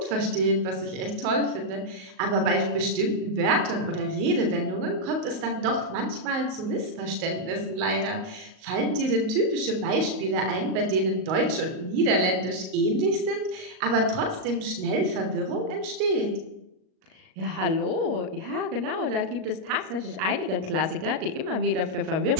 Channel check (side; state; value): left; late; 38 ms